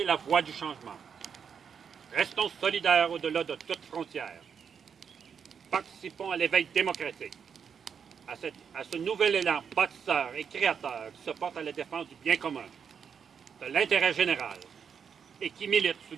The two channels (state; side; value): quieter; left; 7.0 dB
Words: la voix du changement. Restons solidaires au-delà de toute frontière. Participons à l'éveil démocratique, à ce nouvel élan bâtisseur et créateur qui se porte à la défense du bien commun, de l'intérêt général et qui milite sous